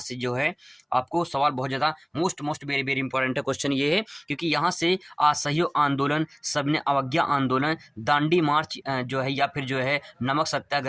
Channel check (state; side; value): identical; both; correlation 1.00